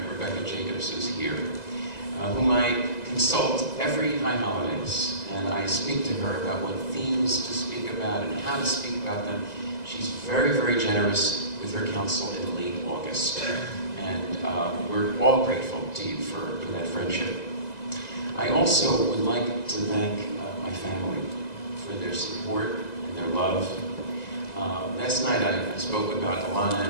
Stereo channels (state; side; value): late; right; 2.0 ms